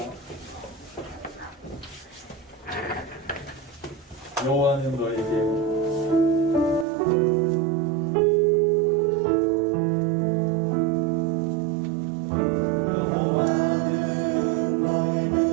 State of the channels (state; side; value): drops out; left; at 6.9 s